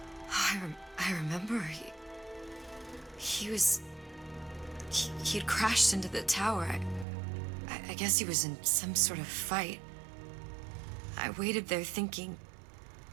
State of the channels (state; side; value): drops out; left; at 7.1 s